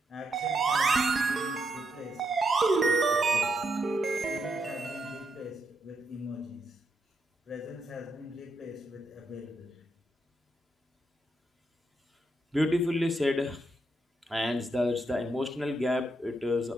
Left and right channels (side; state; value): both; normal; correlation 0.80